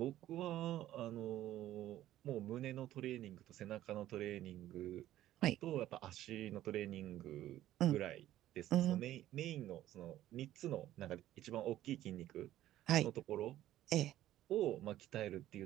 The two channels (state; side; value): quieter; left; 13.6 dB